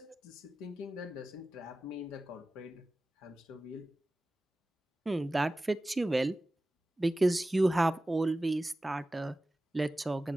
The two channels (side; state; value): both; normal; correlation 0.96